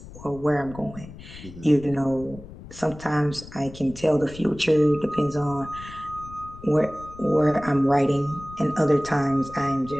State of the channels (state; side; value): noise; left; rumble, 16 dB below the sound